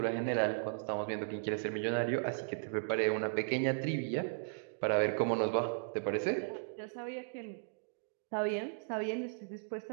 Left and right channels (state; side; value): silent; left; digital silence